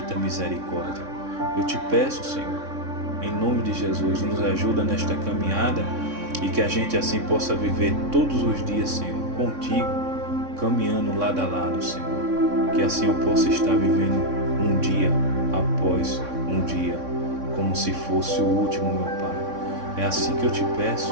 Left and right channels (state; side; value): late; left; 3.6 ms